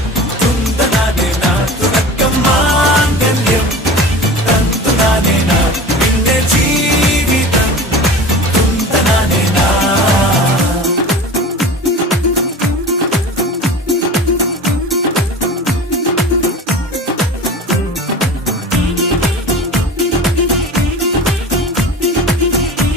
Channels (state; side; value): normal; both; correlation 0.35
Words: തുന്തനാനേന തുടക്കം മാംഗല്യം തന്തുനാനേന പിന്നെ ജീവിതം തുന്തനാനേന.